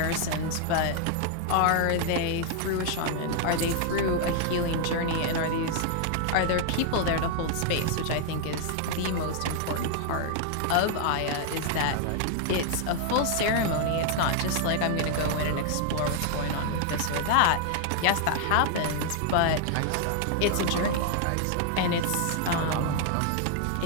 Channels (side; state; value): both; different; correlation 0.00